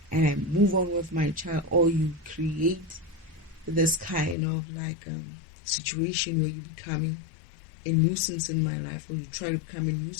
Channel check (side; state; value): right; drops out; at 4.4 s